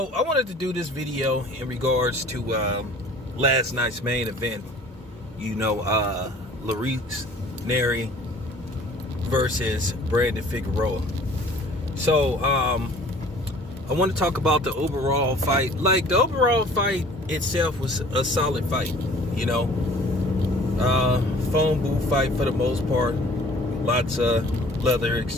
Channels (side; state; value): both; normal; correlation 0.50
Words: I wanted to do this video in regards to last night's main event. You know, Nery versus Brandon Figueroa. So, I want to talk about the overall fight. Like, the overall fight itself was a solid fight, you know. Phone booth fight for the most part. Lots of leather